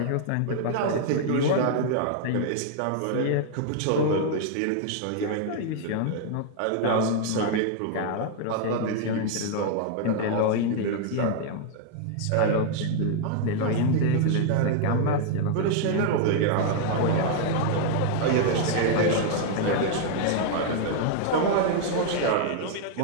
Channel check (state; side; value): different; both; correlation 0.00